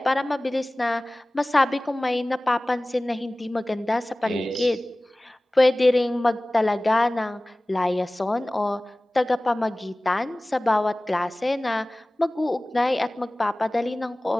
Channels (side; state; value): both; normal; correlation 0.98